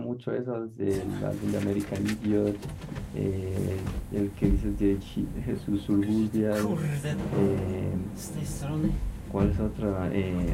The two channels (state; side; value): identical; both; correlation 1.00